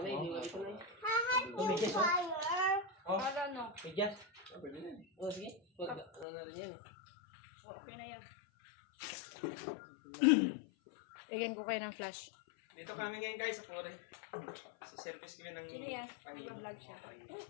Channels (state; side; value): drops out; right; at 6.2 s